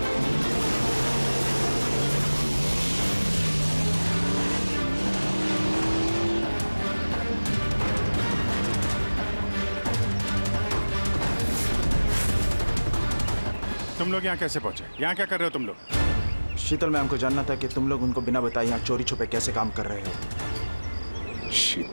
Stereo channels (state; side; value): inverted; both; correlation -1.00